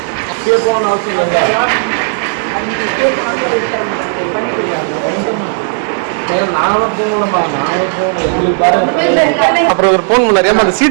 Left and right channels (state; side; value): silent; left; digital silence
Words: அப்படியே போகணும்னு அவசியம் இல்லைல்ல. நானும் போகணுமா? நானும் போகணும். எங்களுக்கு பாரு. அப்புறம் ஒரு போன் பண்ணாரு, அந்த